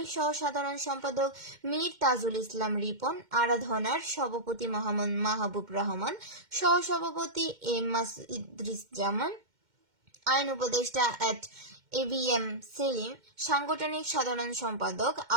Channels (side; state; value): left; late; 2.1 ms